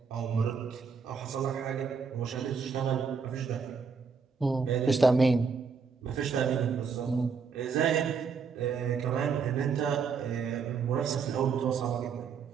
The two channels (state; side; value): quieter; left; 5.6 dB